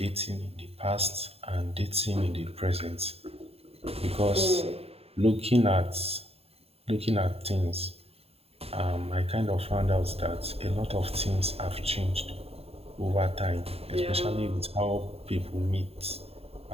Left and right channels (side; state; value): left; late; 0.29 ms